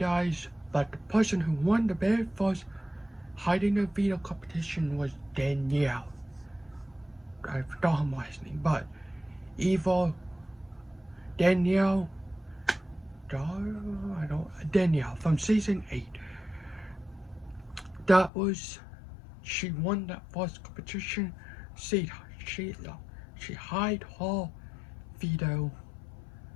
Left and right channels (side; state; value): right; drops out; at 18.3 s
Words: but the person who won the very first Hiding the Veto competition was Danielle. I forgot her last name, but Danielle from season 8. She won that first competition. She hid her veto,